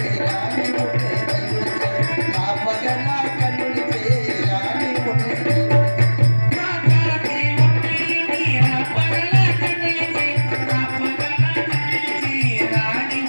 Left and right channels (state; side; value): inverted; both; correlation -1.00